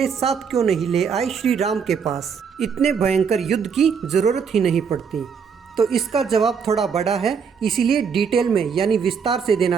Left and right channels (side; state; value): left; quieter; 6.4 dB